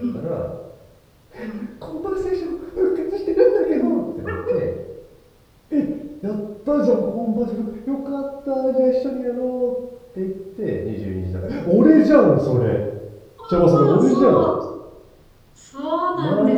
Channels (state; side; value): identical; both; correlation 1.00